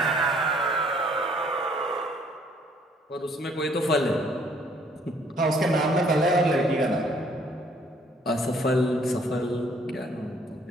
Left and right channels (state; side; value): normal; both; correlation 0.63